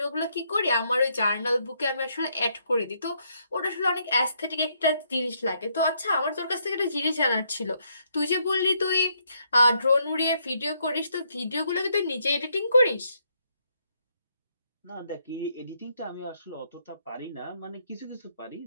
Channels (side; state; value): both; inverted; correlation -0.74